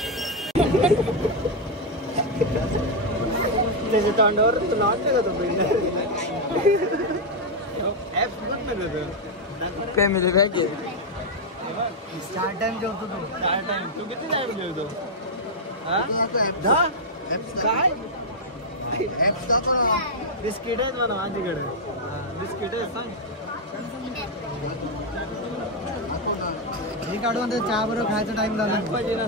त्याच्या तोंडावर तुला वाटतं का तो फॅमिली पॅक आहे. स्टार टाइम जेवतो तू. स्टार टाइम तू किती टाइम जेवतो? काय बिस्किट आहेत म्हणा माझ्याकडे. बिस्किट आहेत सांग हे काढून चहा बरोबर खायचा टाइम झाला पाहिजे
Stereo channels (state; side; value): normal; both; correlation 0.00